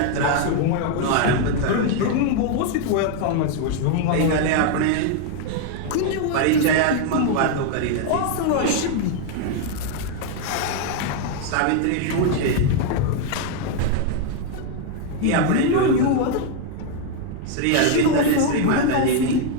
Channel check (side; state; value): both; different; correlation 0.00